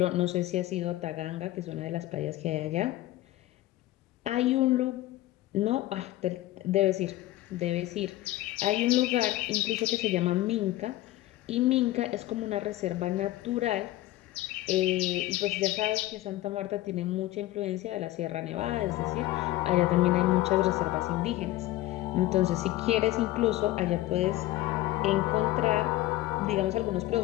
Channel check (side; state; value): right; quieter; 16.1 dB